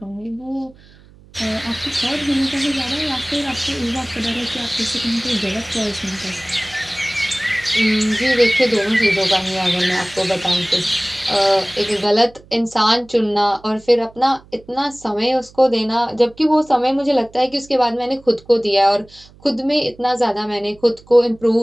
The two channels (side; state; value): right; noise; hum, 25 dB below the sound